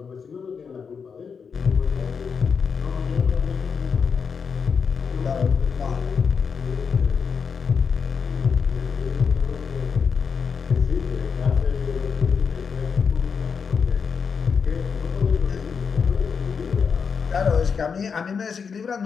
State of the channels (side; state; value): right; quieter; 6.0 dB